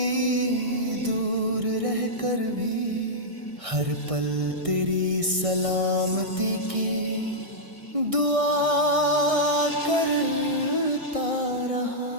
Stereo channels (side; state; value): left; late; 1.6 ms